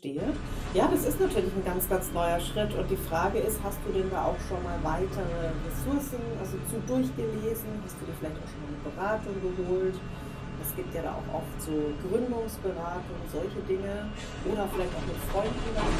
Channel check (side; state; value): both; identical; correlation 1.00